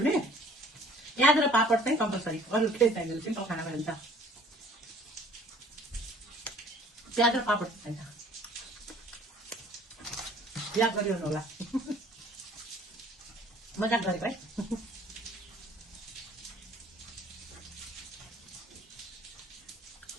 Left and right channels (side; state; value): both; normal; correlation 0.53